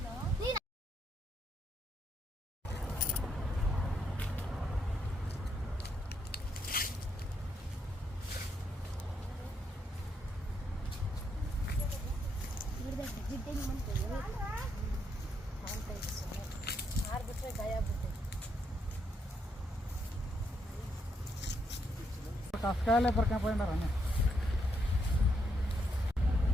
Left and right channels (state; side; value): normal; both; correlation 0.77